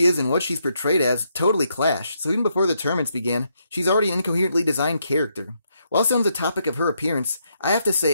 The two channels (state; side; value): inverted; both; correlation -0.77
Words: is and what she's portrayed as totally clash, so even before the tournaments began, she's already an incoherently designed character. While still on the topic of her appearance, I have to